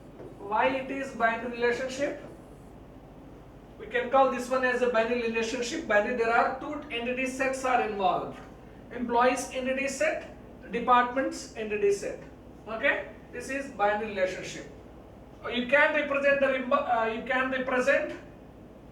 Why it is binary relationship? We can call this one as a binary relationship. Binary, there are two entity sets are involved. Employees entity set, departments entity set. Okay, this is binary relationship. You can represent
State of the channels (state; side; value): identical; both; correlation 1.00